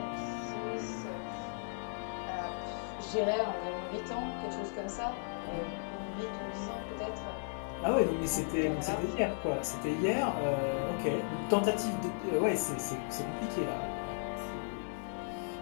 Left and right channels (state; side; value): silent; right; 54 dB below the other